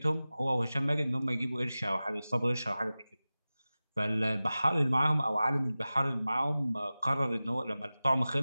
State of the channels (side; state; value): both; inverted; correlation -0.97